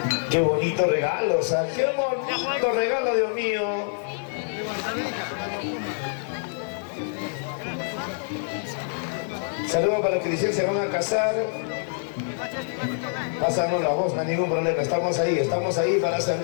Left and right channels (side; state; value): right; silent; 61 dB below the other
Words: Qué bonito regalo, o sea, qué bonito regalo, Dios mío. Saludos para los que dicen que se van a casar. Pásanos la voz, no hay ningún problema. Estamos ahí para